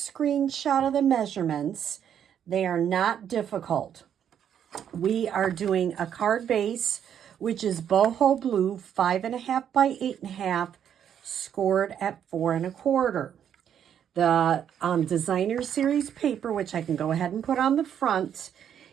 of the measurements, they are not difficult. We are doing a card base, which is boho blue, 5.5 by 8.5, scored at 4 1/4. The designer series paper, which I can go ahead and put on the front,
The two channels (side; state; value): left; quieter; 9.1 dB